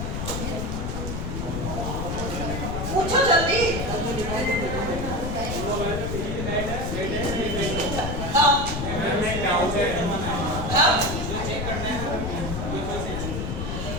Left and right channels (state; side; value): noise; left; rumble, 3 dB below the sound